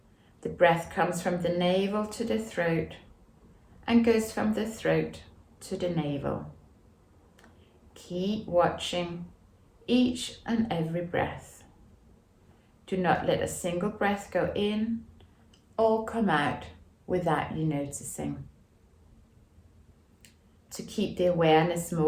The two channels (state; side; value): identical; both; correlation 1.00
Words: the breath comes from the navel to the throat and goes from the throat to the navel. Keep watching each and every breath. Do not let a single breath go in or come out without you noticing. To keep the awareness